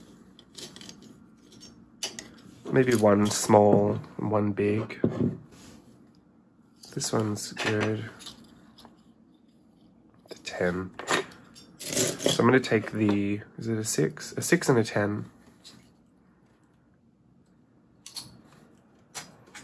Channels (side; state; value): both; identical; correlation 1.00